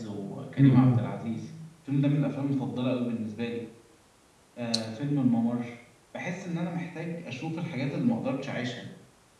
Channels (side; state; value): both; identical; correlation 1.00